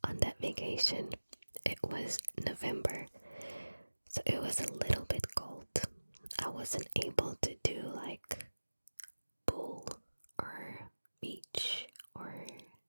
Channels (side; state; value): both; inverted; correlation -1.00